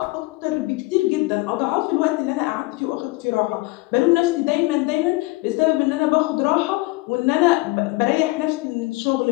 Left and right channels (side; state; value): right; quieter; 22.3 dB